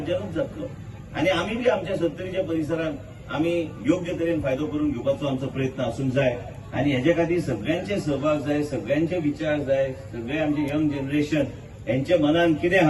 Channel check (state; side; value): identical; both; correlation 1.00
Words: जातलो आनी आमी बी आमच्या सत्तरीच्या परिसरांत आमी योग्य तरेन फायदो करून घेवपाचो आमचो प्रयत्न आसूंक जाय आनी हेजे खातीर सगळ्यांचे सहभाग जाय, सगळ्यांचे विचार जाय, सगळे आमचे यंग जनरेशन यांच्या मनान कितें